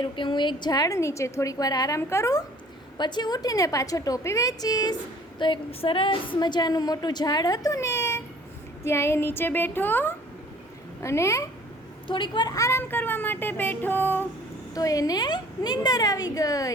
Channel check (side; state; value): both; normal; correlation 0.52